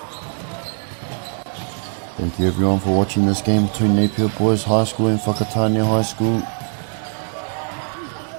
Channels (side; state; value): left; silent; 58 dB below the other